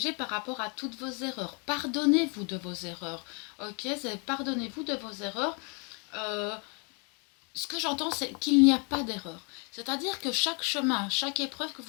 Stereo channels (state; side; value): quieter; right; 34.6 dB